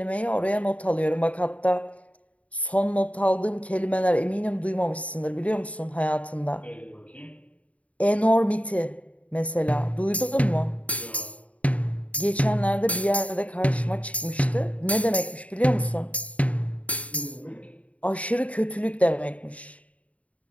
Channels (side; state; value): right; late; 0.067 ms